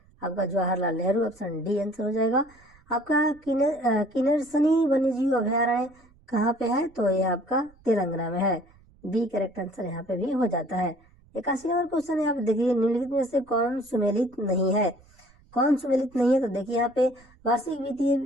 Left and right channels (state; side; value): noise; right; rumble, 29 dB below the sound